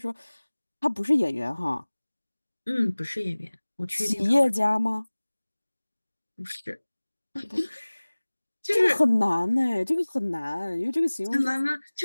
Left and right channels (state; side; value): inverted; both; correlation -1.00